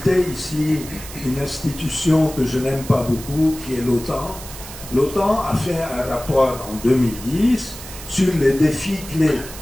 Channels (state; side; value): noise; right; hiss, 13 dB below the sound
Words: ici une institution que je n'aime pas beaucoup, qui est l'OTAN. L'OTAN a fait un rapport en 2010 sur les défis clés